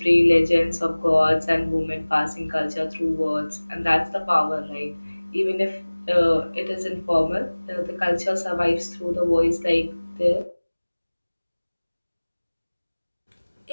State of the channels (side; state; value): both; inverted; correlation -1.00